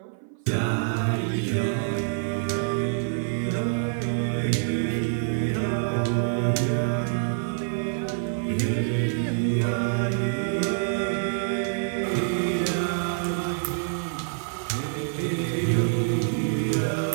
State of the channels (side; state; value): left; silent; 56 dB below the other